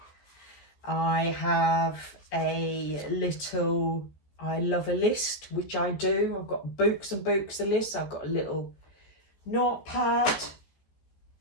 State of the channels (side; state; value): right; late; 14 ms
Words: I have a little I love a list, which I do. I've got books and books of lists. I've got a little notepad.